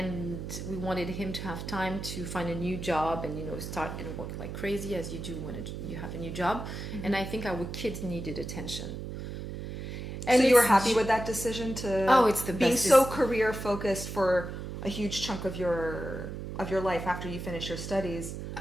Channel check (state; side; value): noise; right; hum, 7 dB below the sound